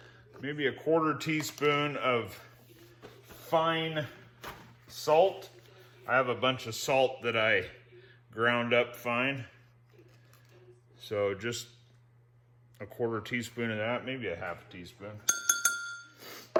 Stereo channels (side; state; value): both; identical; correlation 1.00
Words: a quarter teaspoon of fine salt. I have a bunch of salt that I ground up fine. So just a quarter teaspoon of that, maybe a half a teaspoon.